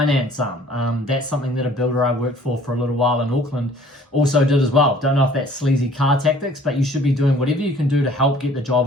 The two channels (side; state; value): both; normal; correlation 0.54